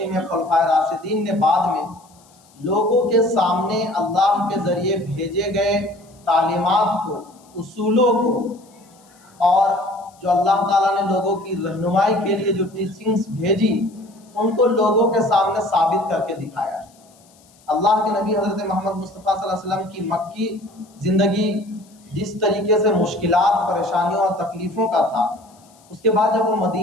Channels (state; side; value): noise; left; hiss, 30 dB below the sound